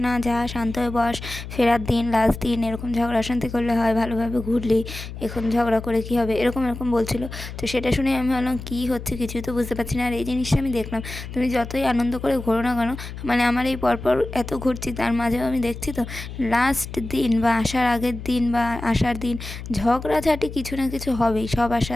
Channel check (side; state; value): left; noise; hum, 10 dB below the sound